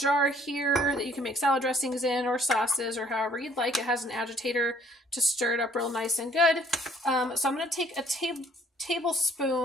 here that you can make salad dressings in, or sauces, or however you'd like. It has an agitator to stir it up real nice and good. So I'm going to take a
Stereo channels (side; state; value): both; normal; correlation 0.60